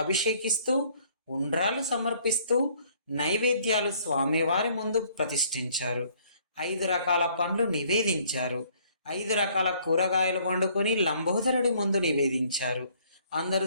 అభిషేకిస్తూ ఉండ్రాలు సమర్పిస్తూ నైవేద్యాలు స్వామివారి ముందు ప్రతిష్ఠించారు. 5 రకాల పండ్లు నివేదించారు. 5 రకాల కూరగాయలు వండుకొని లంబోదరుడి ముందు నివేదించారు. అందరూ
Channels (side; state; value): both; inverted; correlation -0.61